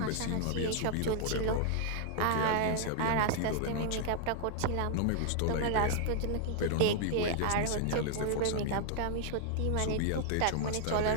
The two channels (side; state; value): both; different; correlation 0.00